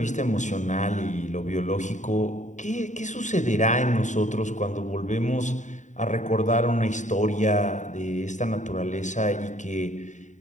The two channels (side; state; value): right; late; 0.36 ms